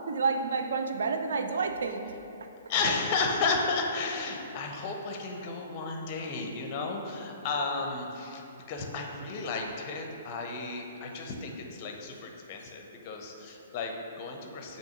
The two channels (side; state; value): both; inverted; correlation -0.44